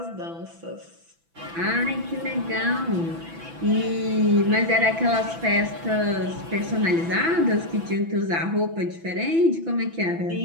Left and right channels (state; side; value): late; left; 6.0 ms